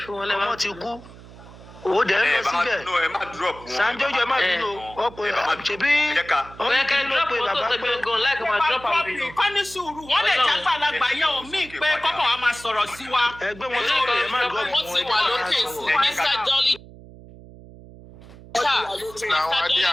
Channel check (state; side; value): noise; right; hum, 19 dB below the sound